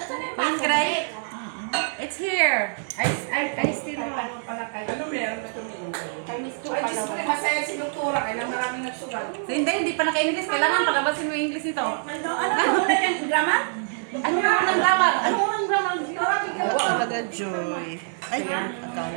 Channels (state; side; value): silent; left; digital silence